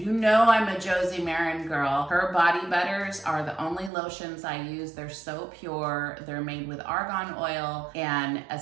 know I'm a Josie Marin girl. Her body butters are the only lotions I use. They're so pure. They're made with argan oil and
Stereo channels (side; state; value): left; drops out; at 3.9 s